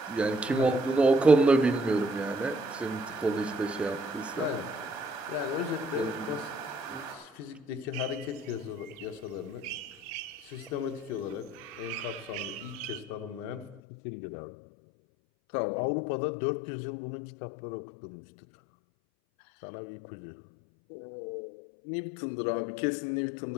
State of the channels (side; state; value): right; drops out; at 13.8 s